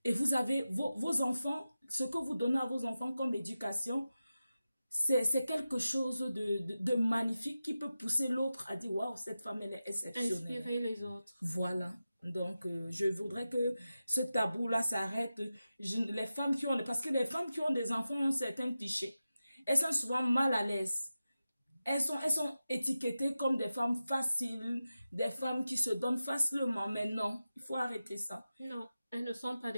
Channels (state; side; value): inverted; both; correlation -0.93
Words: et vous avez vos enfants, ce que vous donnez à vos enfants comme éducation, c'est quelque chose de magnifique qui peut pousser l'autre à dire « Waouh, cette femme, elle est exceptionnelle ». Inspirer les autres. Voilà. Donc, je voudrais que ce tabou-là s'arrête. Les femmes qui ont... Parce que les femmes qui ont des enfants ont certains clichés. Elles sont souvent mal à l'aise. Elles sont étiquetées comme des femmes faciles, des femmes qui se donnent facilement. Mais non, il faut arrêter ça. Non, elles ne sont pas